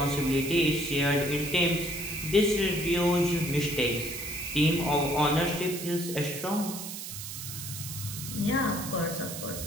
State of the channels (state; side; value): noise; right; hiss, 8 dB below the sound